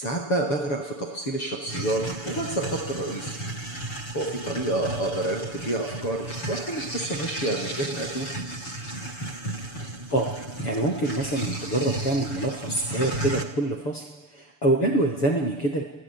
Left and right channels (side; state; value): right; late; 6.9 ms